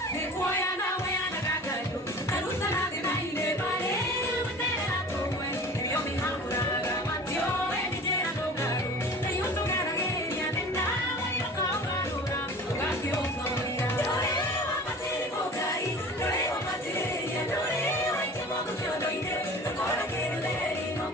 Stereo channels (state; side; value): normal; both; correlation 0.41